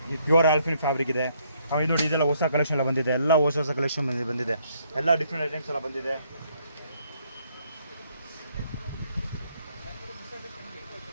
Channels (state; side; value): inverted; both; correlation -0.69